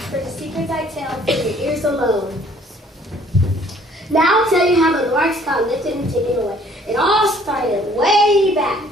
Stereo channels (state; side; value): normal; both; correlation 0.58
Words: for the secrets I tell for your ears alone. Now I'll tell you how the Lorax got lifted and taken away. It all started way back,